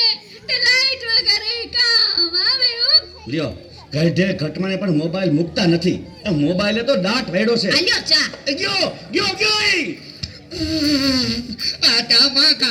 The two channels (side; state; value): both; identical; correlation 1.00